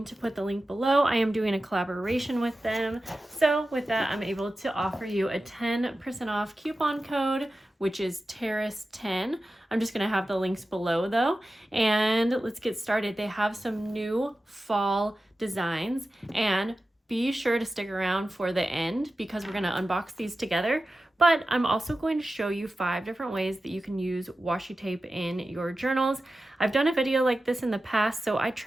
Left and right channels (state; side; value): normal; both; correlation 0.94